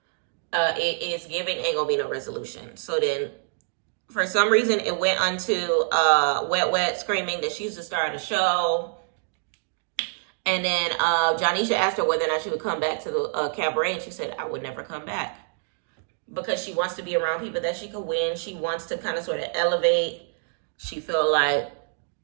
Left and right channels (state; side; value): silent; left; digital silence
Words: it is giving ain't gonna be no resolution. So then for some reason it went onto Wet Wet screaming that she's the star of the show. And then Jonisha asked her whether or not she would come back to the cabaret, and she said, I would never come back. Because she wants to be around people that she could win. She wants to kind of sort of elevate. She felt like